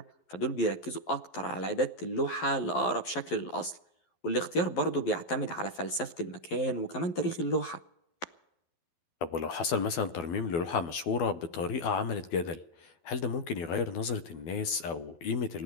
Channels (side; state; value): right; late; 12 ms